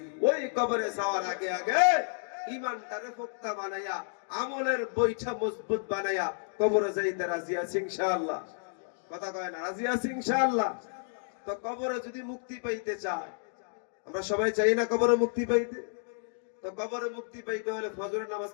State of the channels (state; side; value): silent; right; digital silence